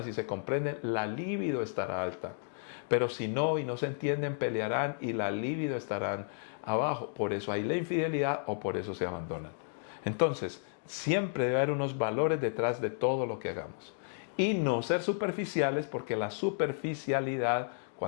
y se comprenden, la libido estará alta. Pero si no y no se entienden, pelearán y la libido estarán abajo. Por eso hay la infidelidad o por eso se abandonan. Entonces, siempre debe haber unos valores detrás de todo lo que hagamos. Y no ser superficiales, porque la superficialidad,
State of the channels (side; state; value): right; silent; digital silence